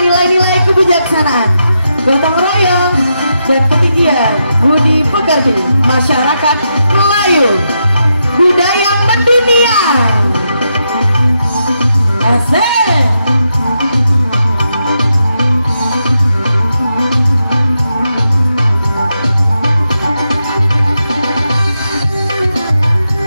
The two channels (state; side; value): inverted; both; correlation -0.84